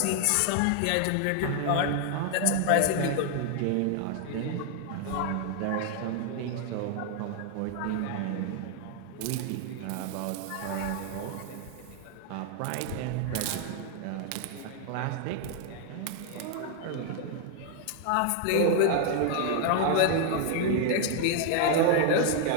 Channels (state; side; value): different; both; correlation 0.00